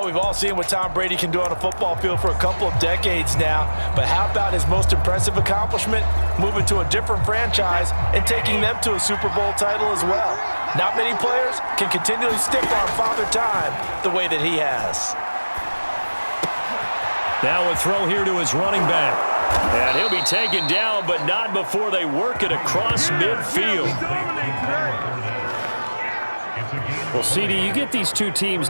we've all seen what Tom Brady can do on a football field for a couple of decades now. But how about his most impressive accomplishment? Moving to a different franchise and taking them to a Super Bowl title as well. Not many players can continually stick on Father Time the way that he has. Now a throw here to his running back. And he'll be taken down, but not before they work it across midfield. Well, CD, you get these two teams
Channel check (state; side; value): inverted; both; correlation -1.00